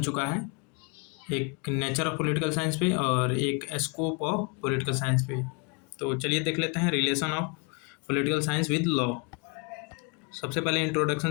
चुका है, एक नेचर ऑफ पॉलिटिकल साइंस पे और एक स्कोप ऑफ पॉलिटिकल साइंस पे। तो चलिए देख लेते हैं relation of political science with law. सबसे पहले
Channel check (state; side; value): quieter; right; 31.0 dB